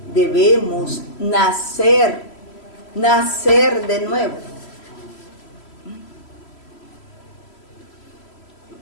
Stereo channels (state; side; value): late; right; 3.0 ms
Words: debemos nacer de nuevo.